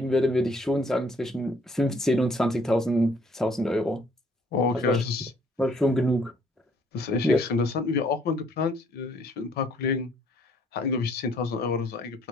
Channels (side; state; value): both; normal; correlation 0.63